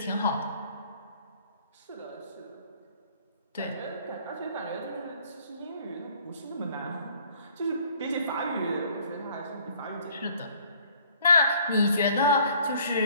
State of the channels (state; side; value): inverted; both; correlation -0.58